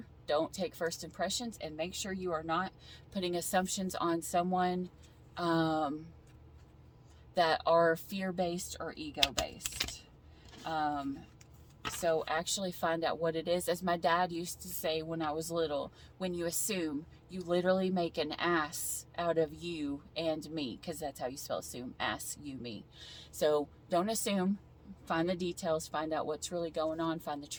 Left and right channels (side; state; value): both; identical; correlation 1.00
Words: Don't take first impressions, and make sure you are not putting assumptions on someone that are fear-based or ego-based. So actually find out what it is. As my dad used to say when I was little, when you assume, you literally make an ass out of you and me, because that's how you spell assume, ass, you, me. So don't assume. Find the details, find out what's really going on, find the